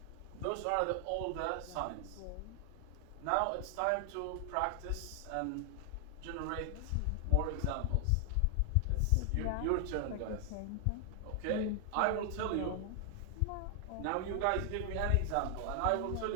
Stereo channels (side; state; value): both; different; correlation 0.00